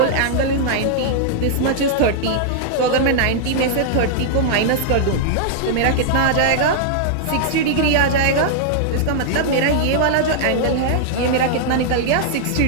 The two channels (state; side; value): different; both; correlation -0.01